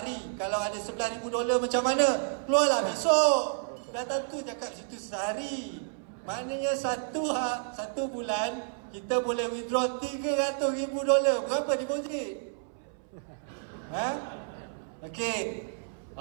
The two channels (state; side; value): silent; left; 58 dB below the other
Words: Kalau ada $11,000 macam mana? Keluarlah besok. Dah tentu cakap situ sehari. Maknanya satu bulan kita boleh withdraw $300,000. Berapa deposit? Okey.